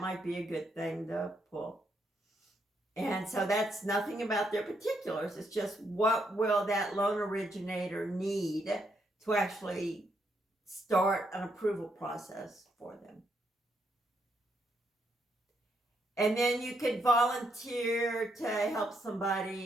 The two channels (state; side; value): normal; both; correlation 0.77